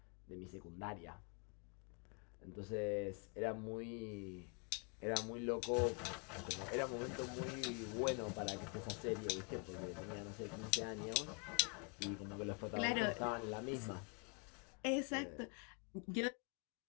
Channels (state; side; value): quieter; right; 35.1 dB